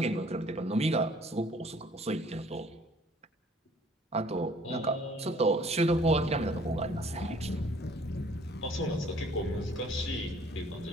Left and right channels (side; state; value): both; normal; correlation 0.57